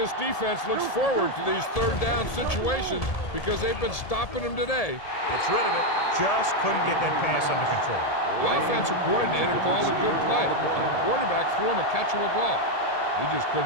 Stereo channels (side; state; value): right; late; 1.8 ms